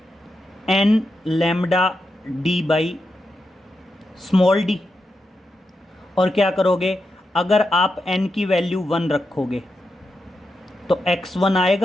n λd/d। और क्या करोगे, अगर आप n की वैल्यू 1 रखोगे तो x1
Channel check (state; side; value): normal; both; correlation 0.87